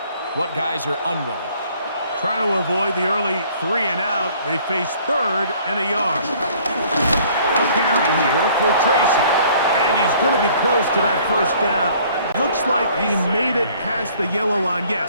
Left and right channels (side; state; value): both; inverted; correlation -0.57